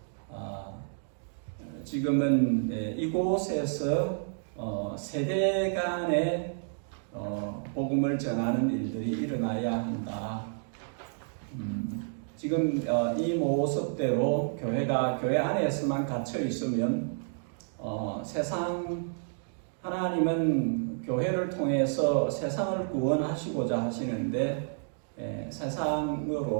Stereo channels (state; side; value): silent; left; digital silence